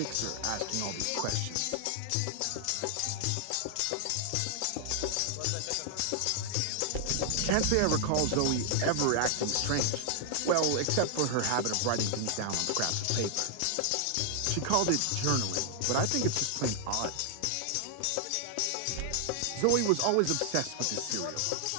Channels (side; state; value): both; different; correlation 0.00